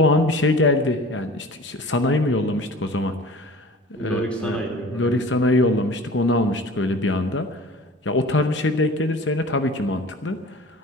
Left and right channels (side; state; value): both; normal; correlation 0.42